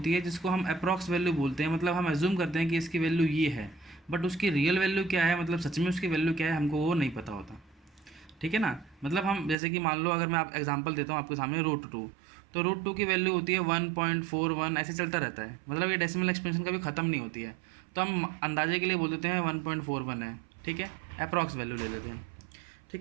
है जिसको हम अप्रॉक्स वैल्यू बोलते हैं। मतलब हम एज्यूम करते हैं कि इसकी वैल्यू ये है, बट उसकी रियल वैल्यू क्या है, मतलब सच में उसकी वैल्यू क्या है, हमको वो नहीं पता होता। ठीक है ना। मतलब हम जैसे कि मान लो, अगर मैं आप एग्जांपल देता हूँ आपके सामने, √2। तो √2 की वैल्यू होती है 1.41, ऐसे चलता रहता है। मतलब ये डेसिमल एक्सपेंशन कभी ख़त्म नहीं होती है। तो हम अंदाजे के लिए बोल देते हैं 1.41 है, ठीक है, अप्रॉक्स वैल्यू ले लेते हैं।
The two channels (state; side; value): drops out; left; at 9.6 s